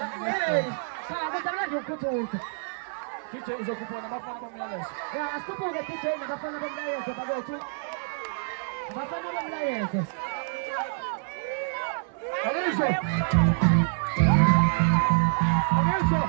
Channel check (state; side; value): silent; left; 60 dB below the other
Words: Hey, saka manje ukukhuthuza. DJ uzokhupha nabafana bomyalezo. Asikhuphuke DJ nabafana bomlayezo bakwethu. Bafana bomlayezo. Alonso.